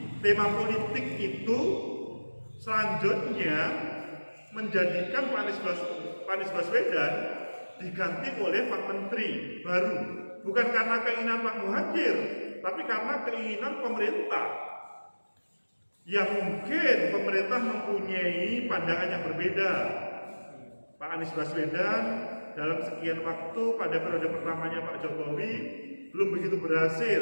tema politik itu selanjutnya menjadikan Pak Anies Baswedan diganti oleh Pak Menteri baru. Bukan karena keinginan Pak Muhadjir, tapi karena keinginan pemerintah. Yang mungkin pemerintah mempunyai pandangan yang berbeda. Pak Anies Baswedan dalam sekian waktu pada periode pertamanya Pak Jokowi belum begitu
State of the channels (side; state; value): both; inverted; correlation -1.00